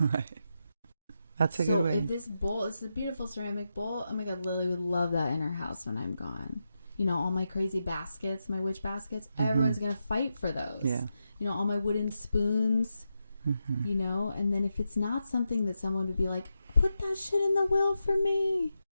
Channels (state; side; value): inverted; both; correlation -0.87